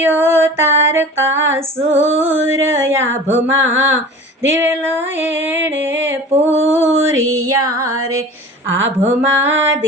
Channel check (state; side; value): normal; both; correlation 0.39